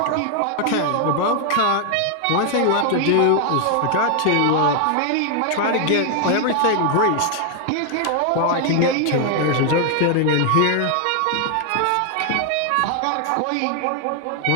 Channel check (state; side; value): different; both; correlation 0.00